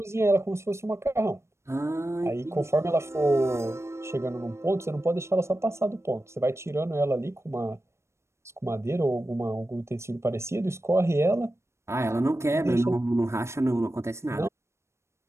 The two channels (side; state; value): left; late; 0.13 ms